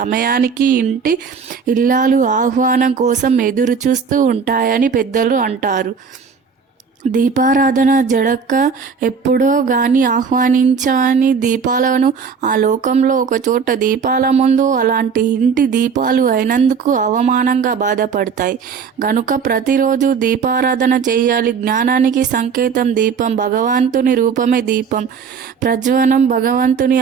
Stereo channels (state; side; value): quieter; left; 6.0 dB